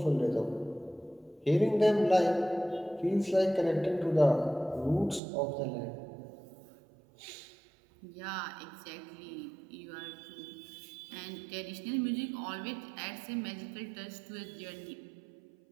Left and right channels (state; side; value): drops out; left; at 5.2 s